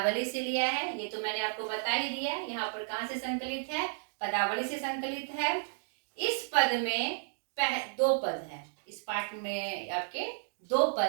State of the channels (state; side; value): silent; left; digital silence